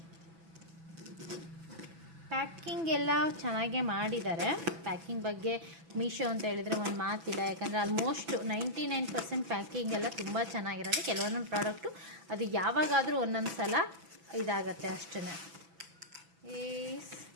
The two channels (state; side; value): late; left; 6.0 ms